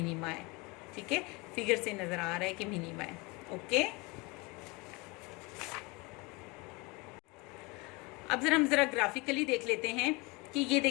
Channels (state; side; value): quieter; right; 26.3 dB